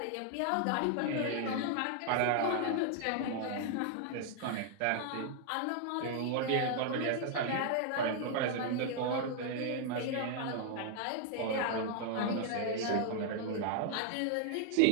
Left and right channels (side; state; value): both; different; correlation 0.00